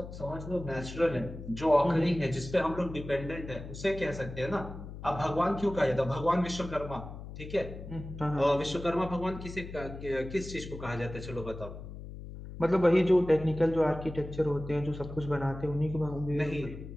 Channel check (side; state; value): left; noise; hum, 11 dB below the sound